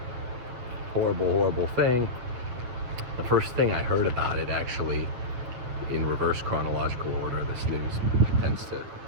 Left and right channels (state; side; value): late; left; 8.4 ms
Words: Horrible, horrible thing. The first thing I heard about it, actually, in reverse chronological order, this news tends